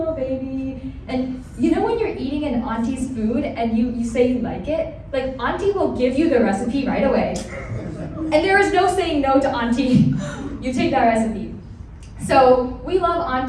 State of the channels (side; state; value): both; identical; correlation 1.00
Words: baby. And when you're eating an auntie's food and you say you like it, auntie will give you the recipe right away. And there is no saying no to auntie. You take that recipe. So we love